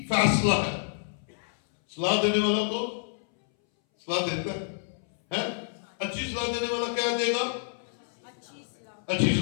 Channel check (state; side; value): silent; right; 59 dB below the other